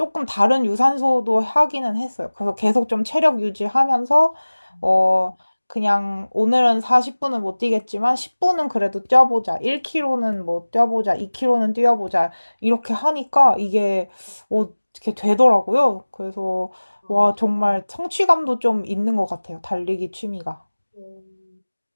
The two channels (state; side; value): inverted; both; correlation -1.00